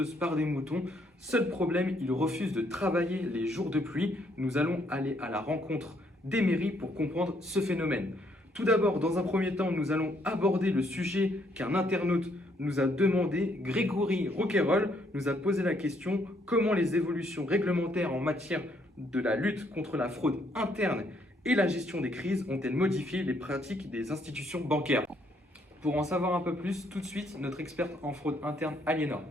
par des moutons. Seul problème, ils refusent de travailler les jours de pluie. Nous allons aller à la rencontre des mairies pour comprendre ce phénomène. Tout d'abord, dans un premier temps, nous allons aborder le sujet qu'un internaute nous a demandé. Grégory Roquayrol nous a posé la question: comment les évolutions réglementaires en matière de la lutte contre la fraude interne et la gestion des crises ont-elles modifié les pratiques des institutions bancaires? Pour en savoir un peu plus, tout de suite, notre experte en fraude interne, Aliénor.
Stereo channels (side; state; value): both; normal; correlation 0.70